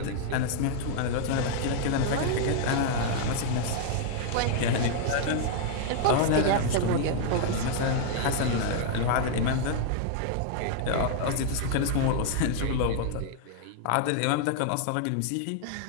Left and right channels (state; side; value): different; both; correlation -0.01